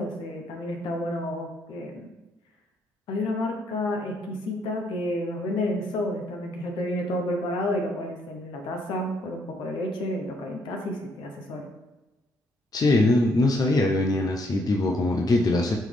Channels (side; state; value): both; normal; correlation 0.71